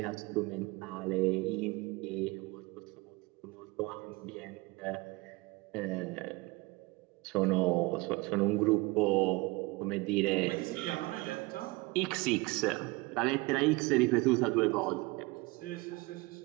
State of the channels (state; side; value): quieter; left; 23.8 dB